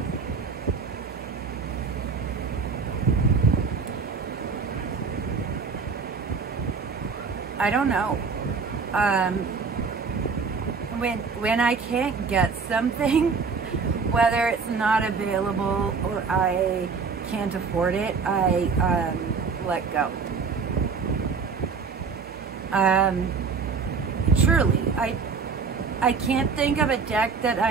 I don't know. when I can't get something, whether it's not available or I can't afford it, I let go. Truly, I can't think of a deck that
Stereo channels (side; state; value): left; quieter; 5.2 dB